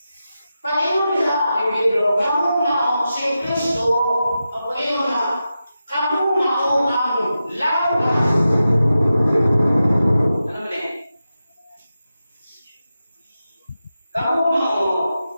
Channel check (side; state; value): both; inverted; correlation -0.91